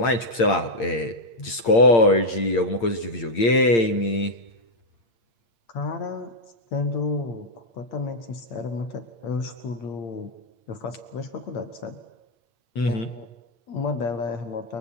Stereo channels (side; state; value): right; late; 8.7 ms